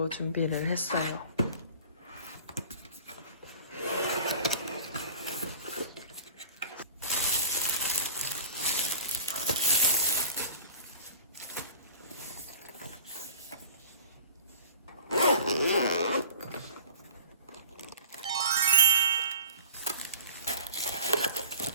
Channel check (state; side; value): inverted; both; correlation -0.40